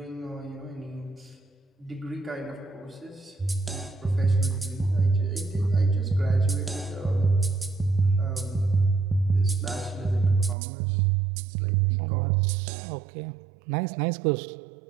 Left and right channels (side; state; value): left; drops out; at 10.6 s